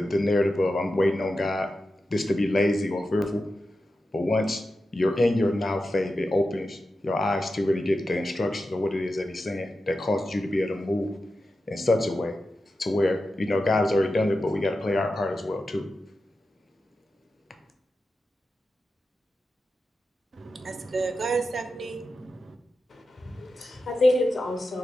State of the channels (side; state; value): both; normal; correlation 0.91